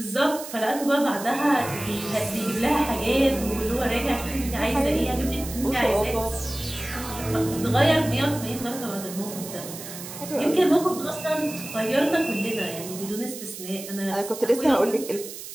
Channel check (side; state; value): right; noise; hiss, 11 dB below the sound